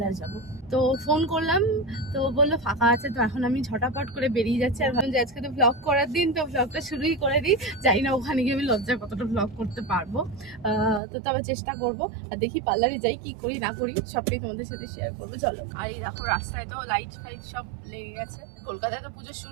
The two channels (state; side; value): drops out; left; at 11.0 s